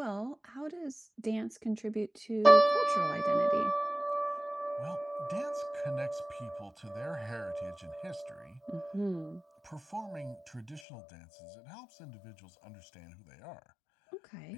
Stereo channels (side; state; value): right; drops out; at 10.8 s